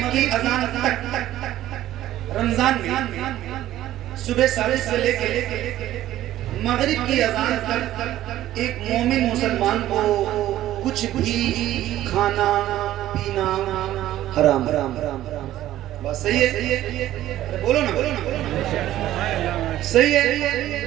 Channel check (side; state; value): left; quieter; 13.7 dB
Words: की अजान तक रमजान में सुबह सादिक से लेकर मगरिब की अजान तक एक मोमिन मुसलमान को कुछ भी खाना पीना हराम हराम हराम बस सही है। बोलो ना सही है।